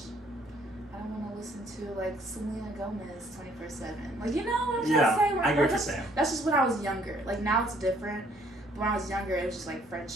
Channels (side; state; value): both; normal; correlation 0.63